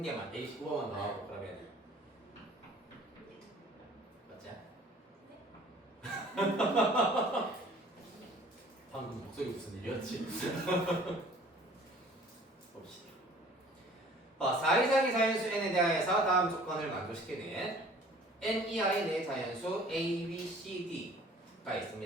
개만 119번만 나오고 그러면 맞지? 방금 목소리 무슨 일이었지? 봅시다. 4 이상의 자연수 n에 대하여서 다음 조건을 만족시키는 n 이하의 네 자연수 a, b, c, d가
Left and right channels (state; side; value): normal; both; correlation 0.51